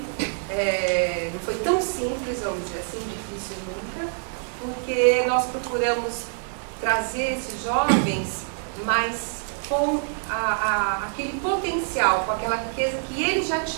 não foi tão simples, vamos dizer assim, difícil nunca, porque nós procuramos trazer esses jovens, mas com aquele potencial, com aquela riqueza que eles já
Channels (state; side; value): silent; left; 61 dB below the other